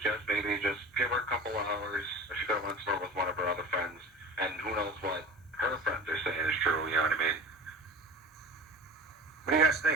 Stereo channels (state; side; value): normal; both; correlation 0.35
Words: maybe just give her a couple of hours. She could have went somewhere with one of her other friends, and who knows what her friends are saying is true. You know what I mean? What do you guys